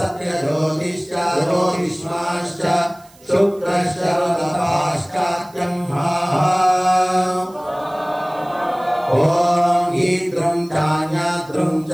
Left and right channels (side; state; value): right; noise; hiss, 27 dB below the sound